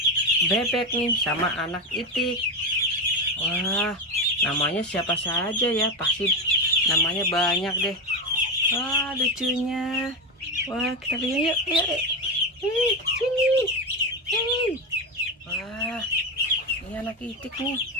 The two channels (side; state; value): both; normal; correlation 0.14